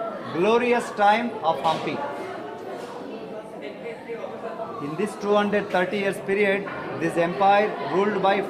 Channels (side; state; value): both; identical; correlation 1.00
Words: glorious time of Hampi. In this 230 years period, this empire ruled by